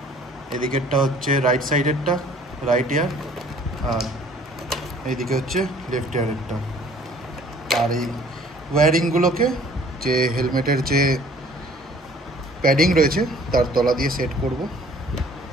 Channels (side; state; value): both; normal; correlation 0.54